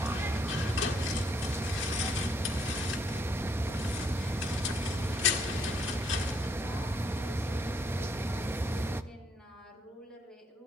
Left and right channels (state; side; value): normal; both; correlation 0.71